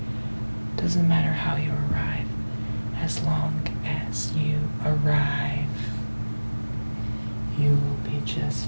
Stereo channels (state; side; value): inverted; both; correlation -1.00